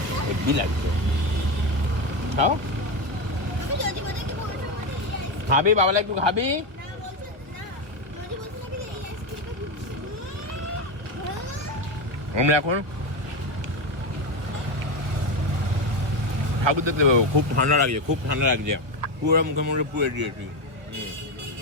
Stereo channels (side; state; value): left; late; 1.5 ms